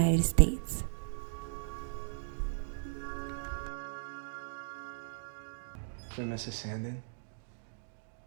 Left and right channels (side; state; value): left; silent; digital silence